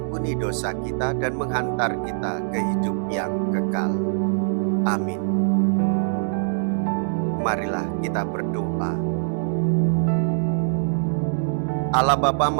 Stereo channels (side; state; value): left; silent; digital silence